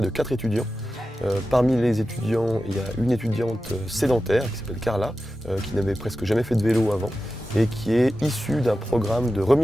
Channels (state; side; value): normal; both; correlation 0.93